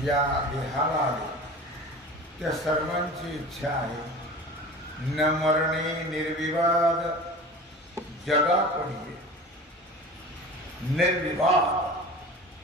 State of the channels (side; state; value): both; normal; correlation 0.37